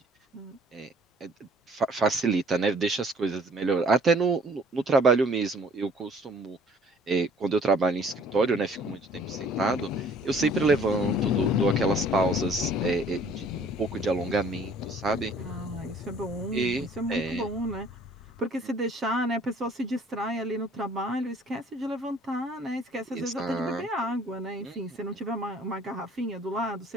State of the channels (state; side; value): normal; both; correlation 0.55